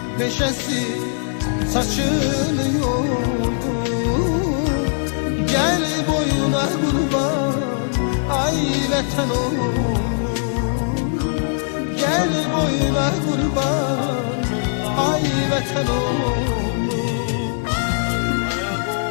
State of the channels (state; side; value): silent; right; digital silence